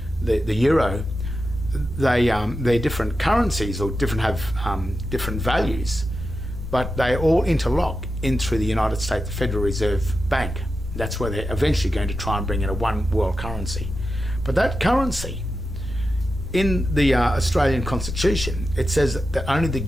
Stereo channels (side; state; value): both; normal; correlation 0.91